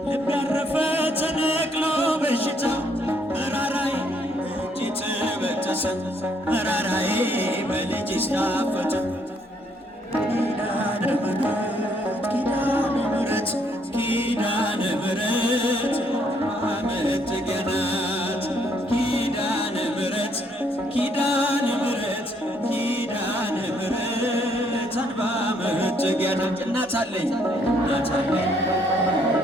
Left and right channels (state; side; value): normal; both; correlation 0.69